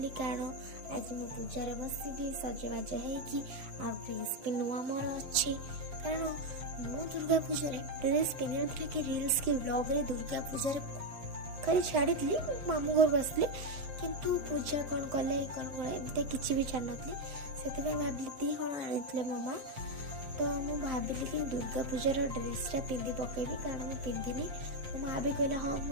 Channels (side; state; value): left; late; 7.6 ms